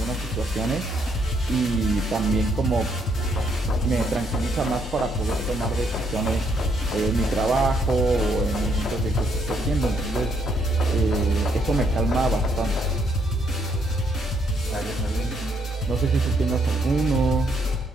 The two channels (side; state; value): both; normal; correlation 0.72